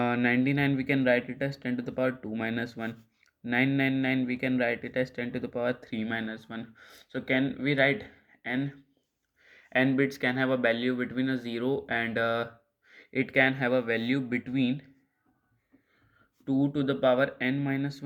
we can write it as 10 to the power 2 minus 1. 999 we can write it as 10 to the power 3 minus 1. So can we write n bits can have a value between a 0 and it can have a value between 2 to the power n minus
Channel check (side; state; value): both; identical; correlation 1.00